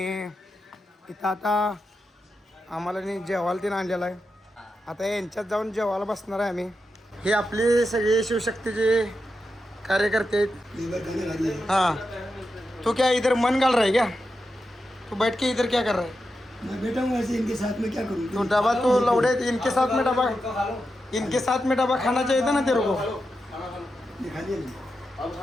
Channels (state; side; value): normal; both; correlation 0.88